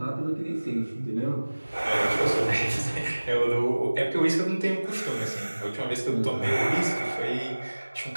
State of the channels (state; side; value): inverted; both; correlation -1.00